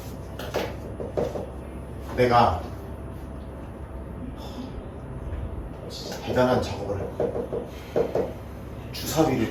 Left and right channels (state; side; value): identical; both; correlation 1.00